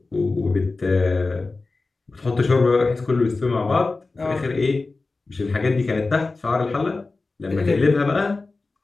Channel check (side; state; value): right; quieter; 3.6 dB